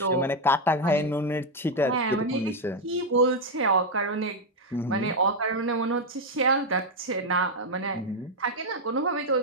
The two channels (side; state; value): both; normal; correlation 0.03